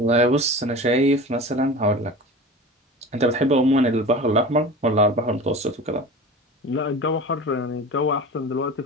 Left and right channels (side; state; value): both; normal; correlation 0.34